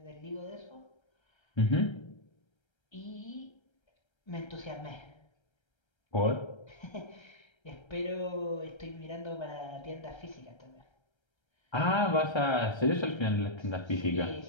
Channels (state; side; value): late; right; 1.3 ms